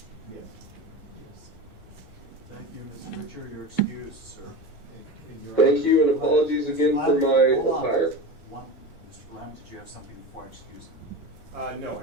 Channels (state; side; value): normal; both; correlation 0.26